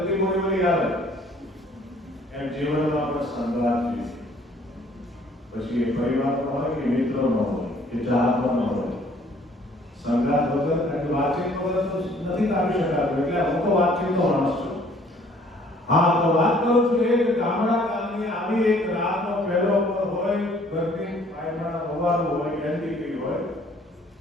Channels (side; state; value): both; normal; correlation 0.58